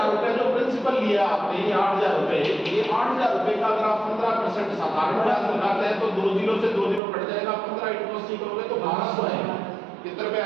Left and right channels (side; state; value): left; drops out; at 7.0 s